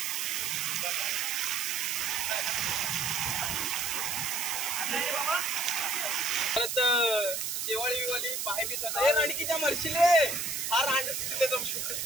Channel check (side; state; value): right; noise; hiss, 2 dB below the sound